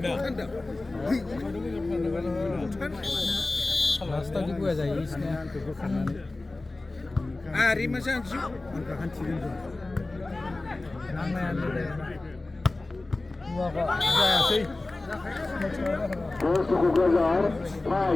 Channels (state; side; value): quieter; right; 3.1 dB